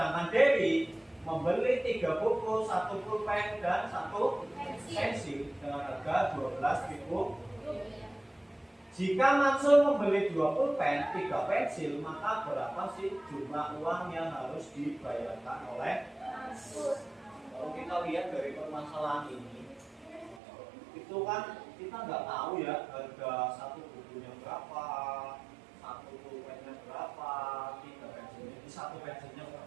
Dewi membeli 3 buku, 1 pulpen, dan 1 pensil dengan harga Rp12.000. Jika Mansur membeli 2 pulpen, 3 pensil, maka berapa sih jumlah uang yang harus dibayarkan oleh Mansur? Kalau kita lihat dari permasalahan ini, itu kan kita nggak tahu ya harga 1 bukunya berapa, 1 pulpennya berapa, 3 pensilnya, 1 pensilnya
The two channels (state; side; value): drops out; left; at 20.4 s